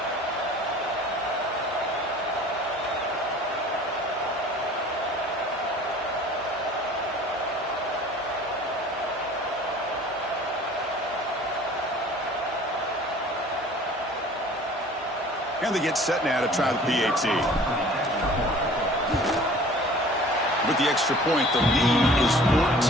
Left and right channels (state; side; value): normal; both; correlation 0.48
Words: And they get set now to try the PAT. With the extra point, the lead is 14.